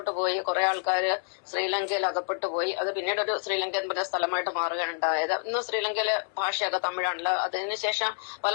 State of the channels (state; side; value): silent; right; digital silence